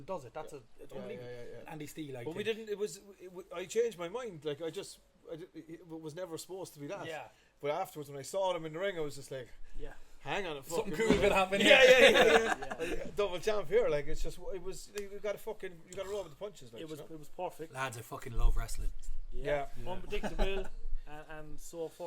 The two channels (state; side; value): identical; both; correlation 1.00